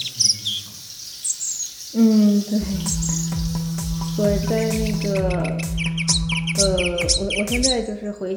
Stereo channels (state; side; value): identical; both; correlation 1.00